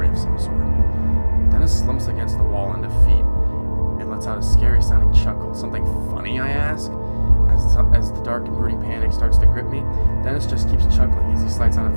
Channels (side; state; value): both; inverted; correlation -1.00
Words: of some sort. Dennis slumps against the wall in defeat and lets out a scary-sounding chuckle. Something funny, I ask? As the dark and brooding panic starts to grip me, Dennis just keeps chuckling as he slides on